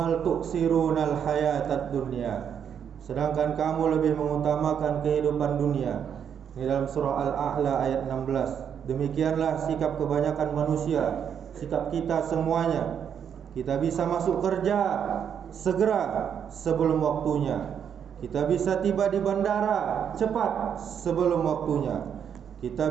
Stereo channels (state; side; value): quieter; left; 8.1 dB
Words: tuksirunal hayatad dunya, sedangkan kamu lebih mengutamakan kehidupan dunia. Ini dalam surah Al-A'la ayat 16. Demikianlah sikap kebanyakan manusia, sikap kita semuanya. Kita bisa masuk kerja segera sebelum waktunya. Kita bisa tiba di bandara cepat sebelum waktunya.